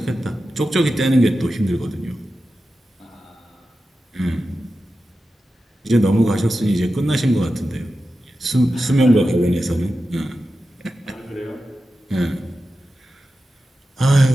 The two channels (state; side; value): normal; both; correlation 0.92